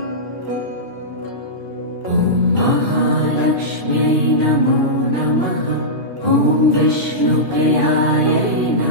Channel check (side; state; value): left; late; 2.6 ms